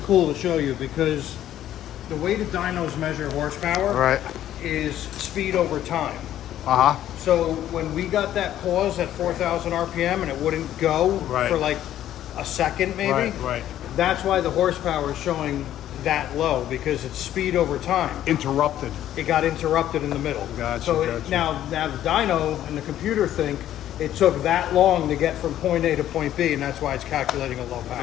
cool to show you because the way the dynos measure horsepower is speed over time. So when we got that pause at 4,000 RPM and it wouldn't go for like a second maybe, that's why the horsepower is showing that low, because it's speed over time. Interrupted. It got interrupted in the middle. Gotcha, So gotcha. now the dyno and the computer think it took that long to get from point A to point B, and that's why it's calculating a low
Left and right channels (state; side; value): quieter; right; 12.0 dB